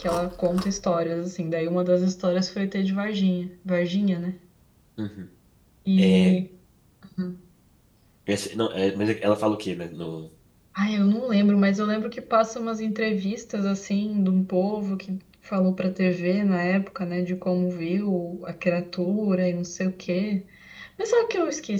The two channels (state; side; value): identical; both; correlation 1.00